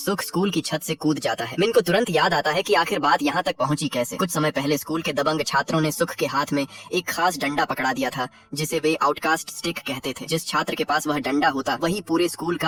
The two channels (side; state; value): both; identical; correlation 1.00